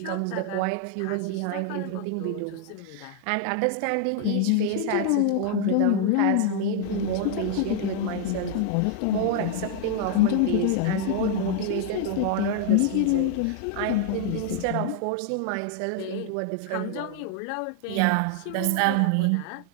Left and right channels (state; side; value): different; both; correlation 0.00